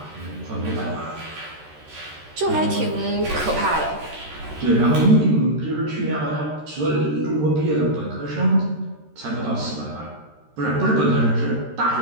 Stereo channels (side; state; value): left; late; 13 ms